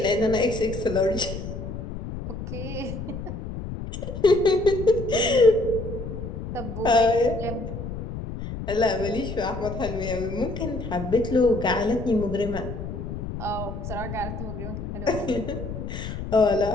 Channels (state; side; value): noise; left; rumble, 7 dB below the sound